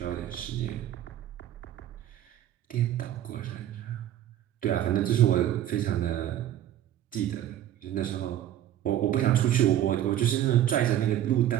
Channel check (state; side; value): quieter; left; 11.8 dB